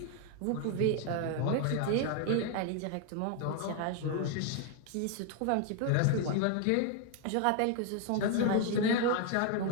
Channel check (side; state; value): both; different; correlation 0.01